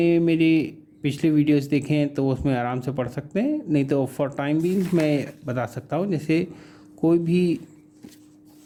मेरी पिछले वीडियोस देखे हैं तो उसमें आराम से पढ़ सकते हैं, नहीं तो फॉर टाइम बीइंग मैं बता सकता हूँ। जैसे कोई भी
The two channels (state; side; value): identical; both; correlation 1.00